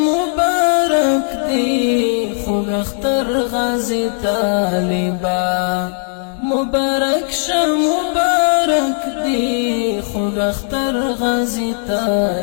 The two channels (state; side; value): silent; right; digital silence